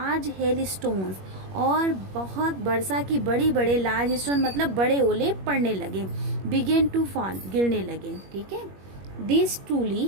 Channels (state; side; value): late; left; 21 ms